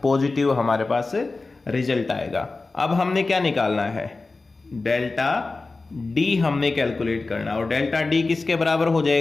पॉजिटिव हमारे पास रिजल्ट आएगा। अब हमने क्या निकालना है डेल्टा D हमने कैलकुलेट करना और डेल्टा D किसके बराबर हो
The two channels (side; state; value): right; quieter; 3.6 dB